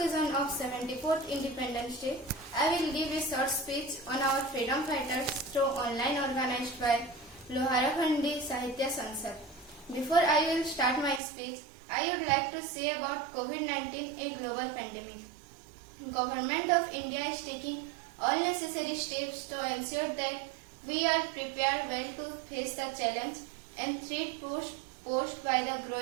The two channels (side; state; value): left; drops out; at 11.2 s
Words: of 74th Independence Day, I will give a short speech on our freedom fighters through online organized by Loharakhandi Sahitya Sansad. Before I will start my speech, I would like to say about COVID-19, a global pandemic. Government of India is taking all necessary steps to ensure that we are prepared well to face the challenge and threat posed by the